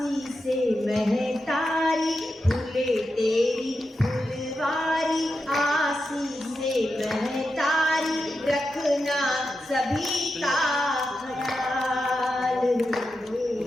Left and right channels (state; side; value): normal; both; correlation 0.88